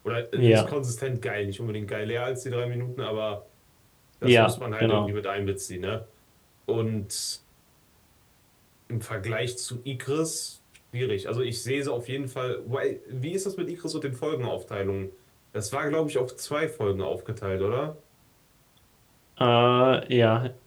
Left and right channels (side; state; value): both; identical; correlation 1.00